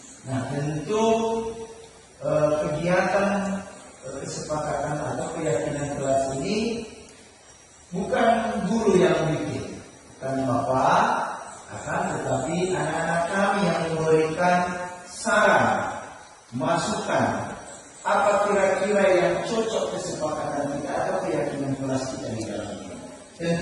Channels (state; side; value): identical; both; correlation 1.00